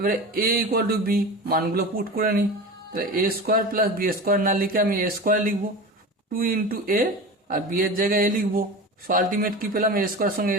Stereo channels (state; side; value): normal; both; correlation 0.30